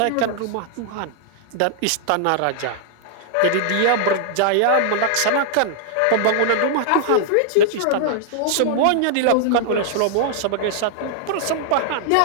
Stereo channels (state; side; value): different; both; correlation -0.01